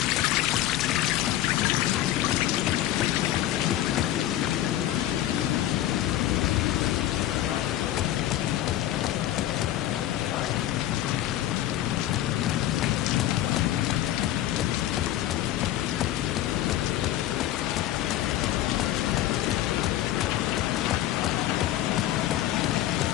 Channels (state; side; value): quieter; right; 13.4 dB